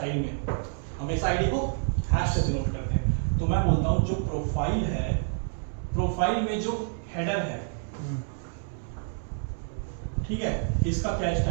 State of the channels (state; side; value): silent; left; 59 dB below the other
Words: में, हमेशा आईडी को हैश से डिनोट करते हैं, तो मैं बोलता हूँ जो प्रोफाइल है, प्रोफाइल में जो हेडर है, ठीक है, इसका क्या